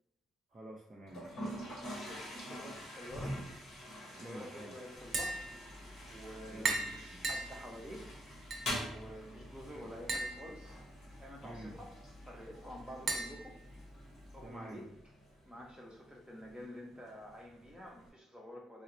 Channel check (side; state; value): both; normal; correlation 0.74